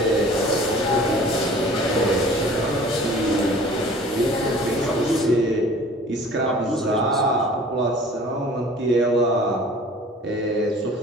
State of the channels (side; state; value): both; normal; correlation 0.47